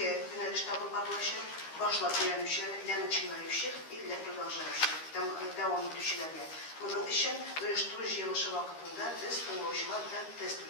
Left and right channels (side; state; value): right; late; 13 ms